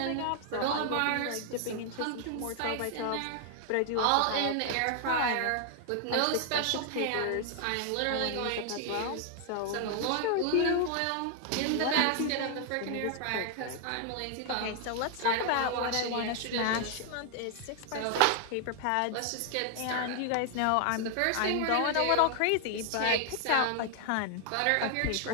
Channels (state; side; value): different; both; correlation 0.00